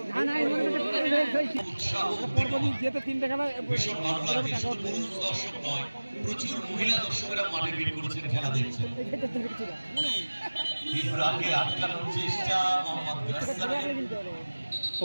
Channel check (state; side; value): inverted; both; correlation -1.00